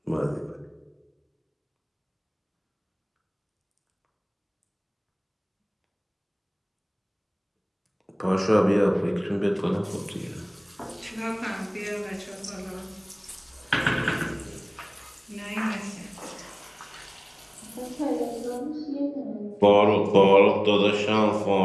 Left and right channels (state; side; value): identical; both; correlation 1.00